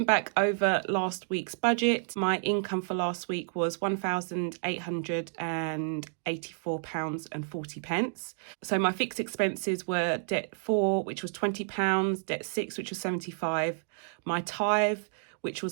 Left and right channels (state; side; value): silent; left; digital silence